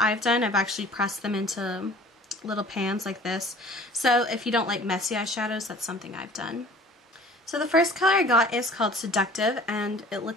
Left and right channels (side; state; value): both; normal; correlation 0.47